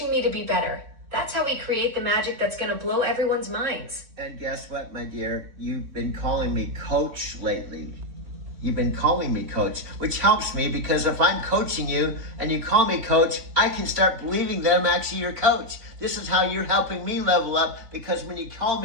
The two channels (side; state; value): left; late; 3.7 ms